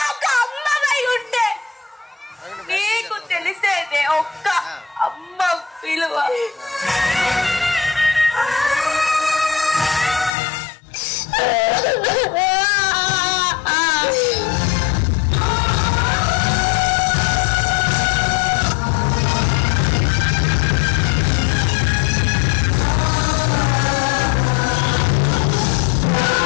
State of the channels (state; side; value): drops out; right; at 10.3 s